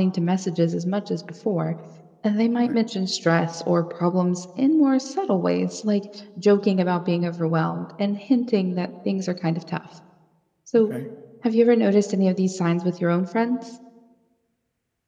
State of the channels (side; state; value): both; identical; correlation 1.00